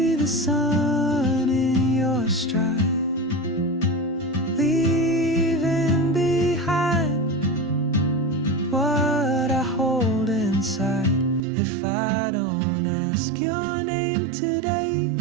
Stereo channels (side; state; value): left; drops out; at 11.4 s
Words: the sun in your stride, leaving behind what I hold inside. If I don't ask your name today,